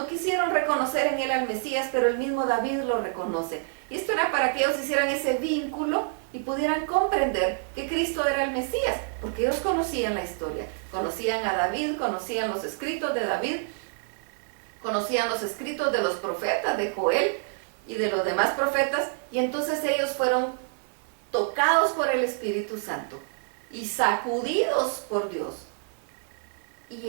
quisieron reconocer en él al Mesías, pero el mismo David lo reconoce. Y esto era para que ellos hicieran ese vínculo y pudieran comprender que Cristo era el Mesías, porque ellos conocían la historia, conocían a David, conocían los escritos de David, conocían los escritos de los profetas, de Joel y de los demás profetas, y entonces ellos fueron tocados por el Espíritu Santo y sacudidos por Dios. Y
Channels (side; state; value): left; silent; 60 dB below the other